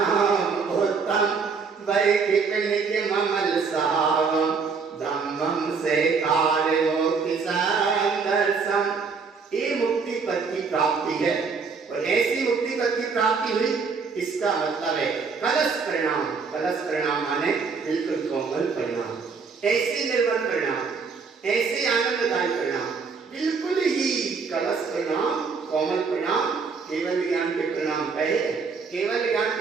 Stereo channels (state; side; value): quieter; left; 5.2 dB